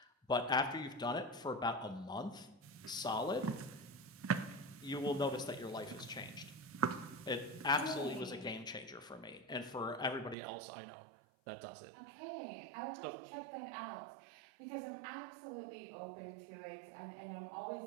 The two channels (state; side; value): drops out; left; at 10.4 s